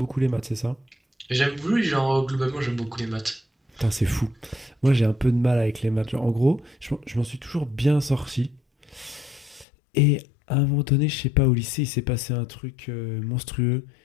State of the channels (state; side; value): drops out; right; at 9.7 s